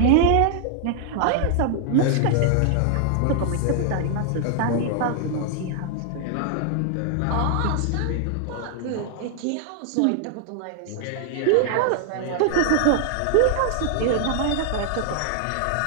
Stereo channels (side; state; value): both; different; correlation 0.00